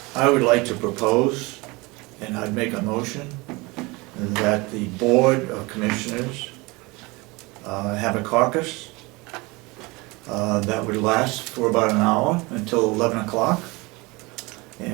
I would like to propose, and I'd make a motion, that the Board of Commissioners have a caucus that would last for about an hour until 11 o'clock.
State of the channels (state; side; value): quieter; left; 24.6 dB